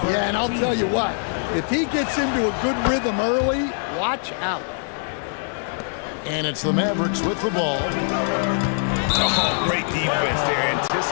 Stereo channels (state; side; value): silent; right; 64 dB below the other